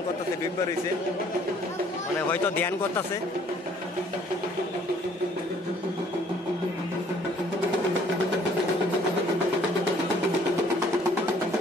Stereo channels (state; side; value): normal; both; correlation 0.60